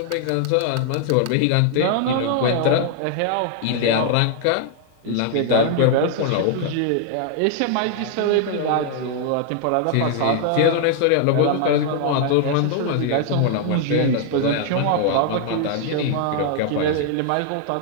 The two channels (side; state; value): both; different; correlation 0.00